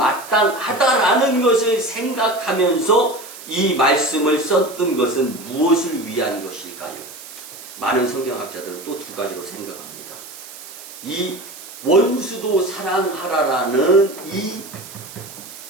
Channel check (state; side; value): noise; right; hiss, 15 dB below the sound